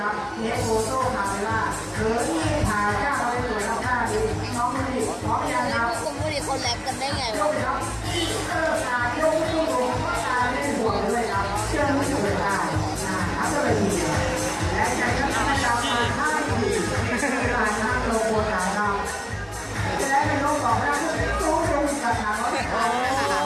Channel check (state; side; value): identical; both; correlation 1.00